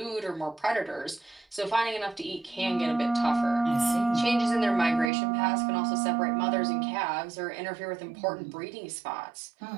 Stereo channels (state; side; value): drops out; left; at 5.1 s